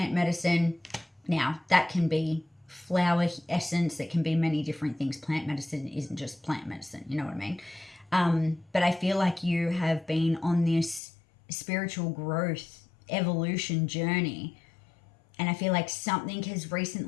medicine. Now that can be flower essence, it can be many different things. Plant medicine isn't just plant medicine, you know what I mean? But I feel like you have been on this spiritual growth evolution journey, and I feel like something has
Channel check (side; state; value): right; drops out; at 11.0 s